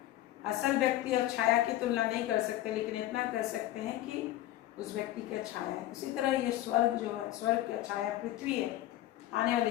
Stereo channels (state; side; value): quieter; right; 14.5 dB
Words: असल व्यक्ति और छाया की तुलना नहीं कर सकते, लेकिन इतना कर सकते हैं कि उस व्यक्ति का छाया है। उसी तरह ये स्वर्ग जो है, स्वर्ग का छाया पृथ्वी है, आने